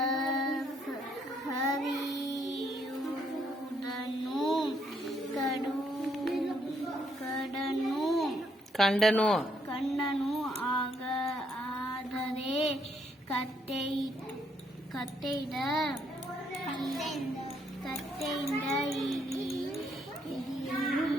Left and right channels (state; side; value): normal; both; correlation 0.72